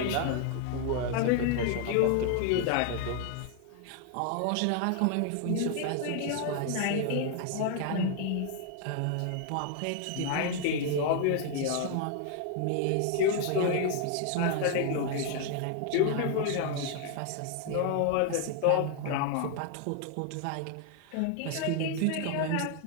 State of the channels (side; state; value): both; different; correlation 0.00